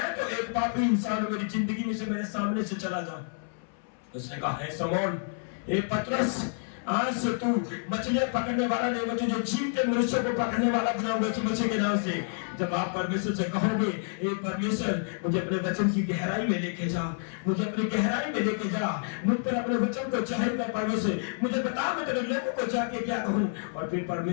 तो एक पापी इंसान हूं, मेरी जिंदगी में से मेरे सामने से चला जा। उसने कहा हे समौन, हे पतरस, आज से तू मछलियां पकड़ने वाला नहीं, मैं तुझे जीवते मनुष्यों को पकड़ने वाला बनाऊंगा यीशु मसीह के नाम से। जब आप परमेश्वर से कहोगे हे परमेश्वर, मुझे अपने वचन की गहराई में लेके जा, मुझे अपनी गहराई में लेके जा, मुझ पर अपने वचन को जाहिर कर परमेश्वर, मुझे बता मैं तेरे लोगों को जाके क्या कहूं। और फिर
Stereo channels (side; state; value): right; silent; 59 dB below the other